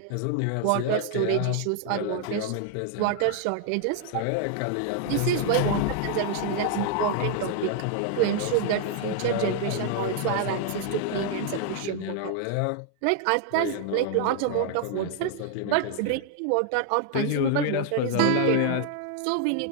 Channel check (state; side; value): different; both; correlation 0.00